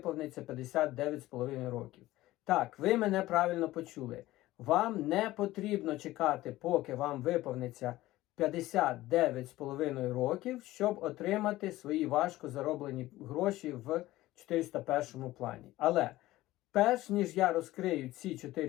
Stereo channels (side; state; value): right; quieter; 16.8 dB